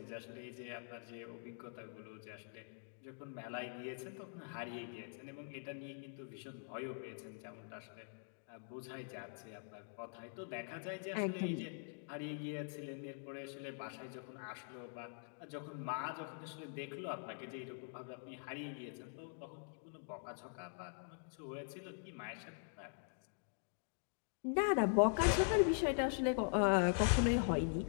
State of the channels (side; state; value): right; silent; digital silence